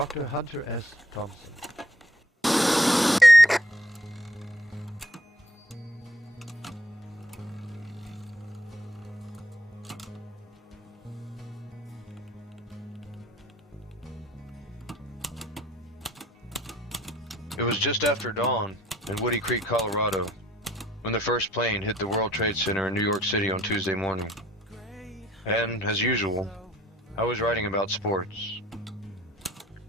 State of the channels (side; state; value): both; normal; correlation 0.64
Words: Hunter S. Thompson. It was just after dawn in Woody Creek, Colorado, when the first plane hit the World Trade Center in New York City on Tuesday morning. And, as usual, I was writing about sports.